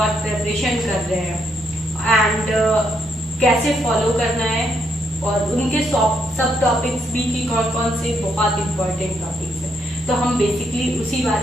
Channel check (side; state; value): both; normal; correlation 0.75